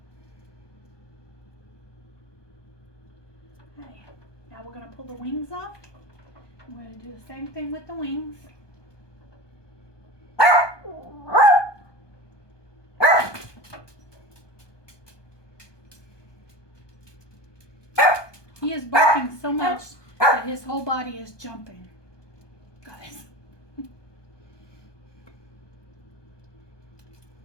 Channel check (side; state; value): right; late; 1.2 ms